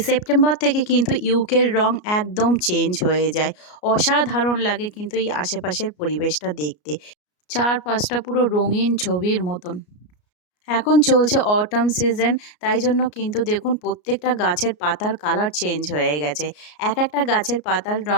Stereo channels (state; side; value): late; right; 33 ms